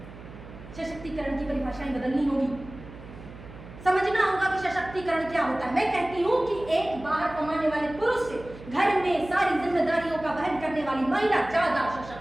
सशक्तिकरण की परिभाषाएं बदलनी होगी, समझना होगा कि सशक्तिकरण क्या होता है। मैं कहती हूँ कि एक बाहर कमाने वाले पुरुष से घर में सारी जिम्मेदारियों का वहन करने वाली महिला ज्यादा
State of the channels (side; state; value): right; noise; hum, 16 dB below the sound